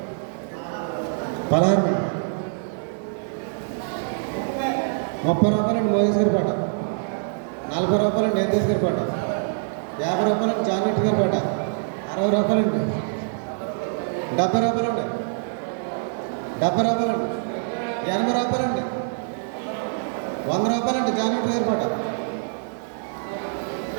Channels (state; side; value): silent; left; digital silence